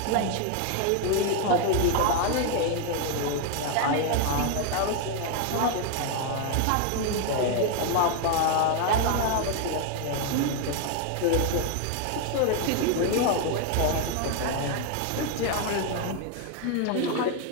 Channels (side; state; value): both; different; correlation 0.01